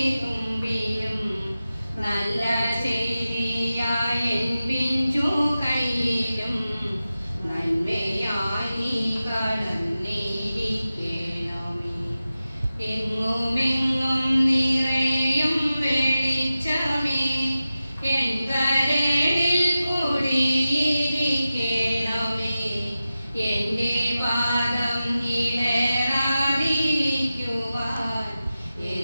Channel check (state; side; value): inverted; both; correlation -0.94